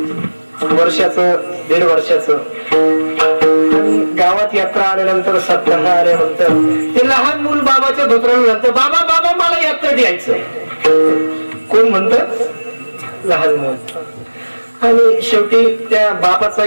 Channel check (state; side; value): inverted; both; correlation -1.00